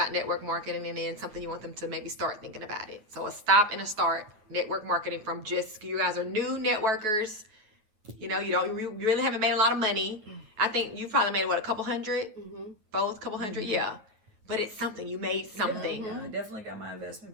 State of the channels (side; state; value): left; late; 9.2 ms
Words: network marketing, and then something you want them to maybe start thinking about it. So a stop and a start network marketing from just, you guys are new networkers. You know, you really haven't made a lot of money. I think you probably made, what, a couple hundred? Mm-hmm. Both, couple hundred? Yeah. But it's something. You made something. Yeah, I definitely got my